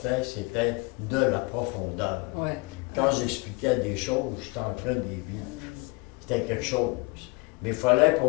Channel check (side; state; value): right; quieter; 27.5 dB